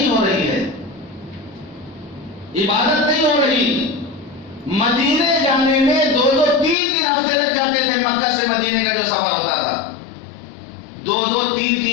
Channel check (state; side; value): drops out; right; at 6.8 s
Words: ہو رہی ہے، عبادت نہیں ہو رہی۔ مدینے جانے میں 2-2 3 ہفتے لگ جاتے تھے، مکہ سے مدینے کا جو سفر ہوتا تھا 2-2